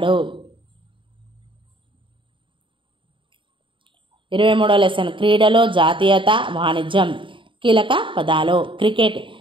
23వ లెసన్ క్రీడలు, జాతీయత, వాణిజ్యం. కీలక పదాలు. క్రికెట్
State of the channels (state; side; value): late; left; 0.24 ms